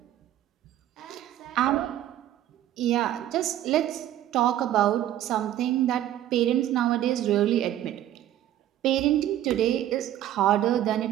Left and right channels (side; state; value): left; quieter; 12.4 dB